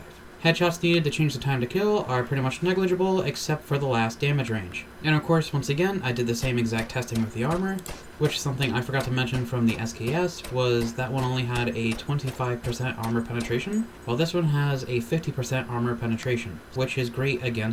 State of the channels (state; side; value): identical; both; correlation 1.00